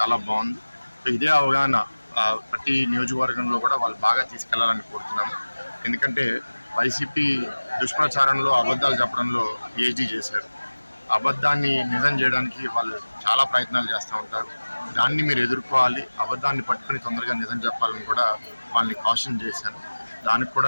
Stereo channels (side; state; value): both; inverted; correlation -1.00